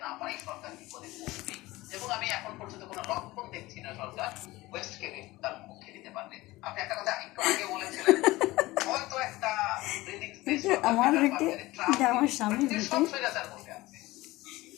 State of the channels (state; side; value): quieter; right; 19.3 dB